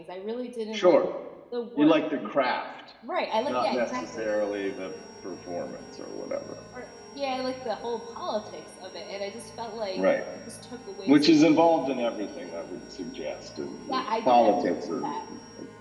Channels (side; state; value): both; identical; correlation 1.00